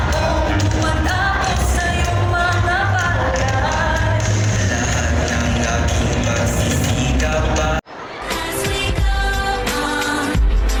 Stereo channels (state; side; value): identical; both; correlation 1.00